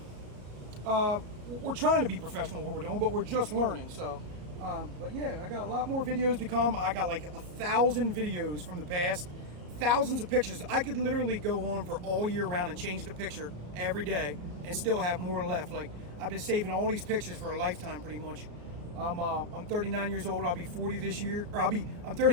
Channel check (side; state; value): left; late; 34 ms